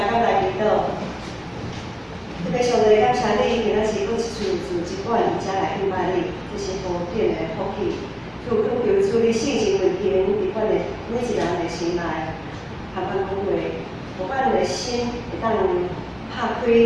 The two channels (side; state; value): both; identical; correlation 1.00